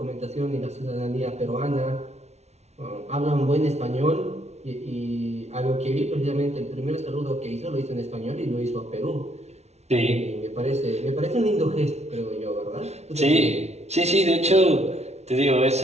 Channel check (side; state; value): left; late; 0.31 ms